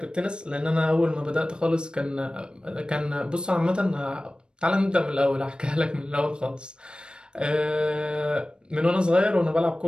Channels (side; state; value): left; late; 0.052 ms